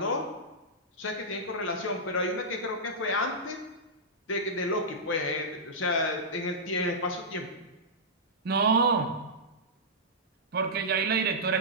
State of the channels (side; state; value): both; normal; correlation -0.14